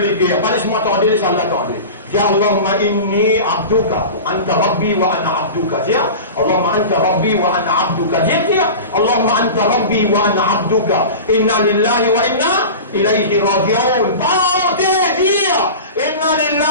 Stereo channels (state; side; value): inverted; both; correlation -0.32